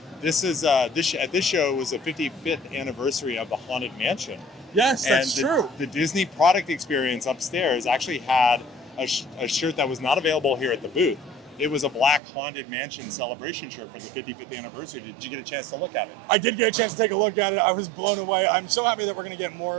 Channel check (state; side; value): drops out; left; at 12.2 s